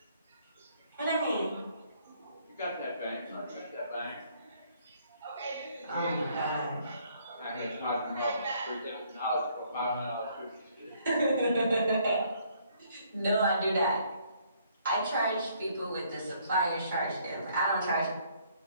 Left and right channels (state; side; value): inverted; both; correlation -0.65